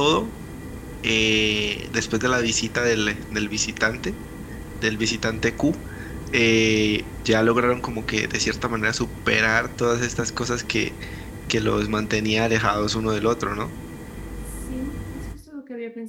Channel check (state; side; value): identical; both; correlation 1.00